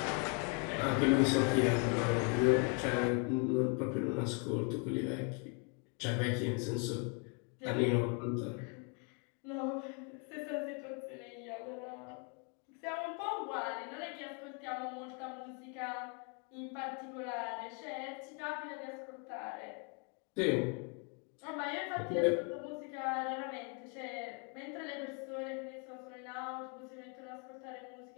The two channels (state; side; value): quieter; right; 37.2 dB